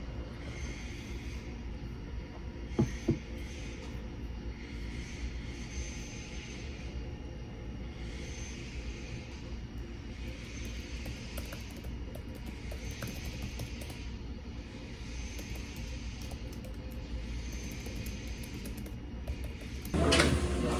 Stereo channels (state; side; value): identical; both; correlation 1.00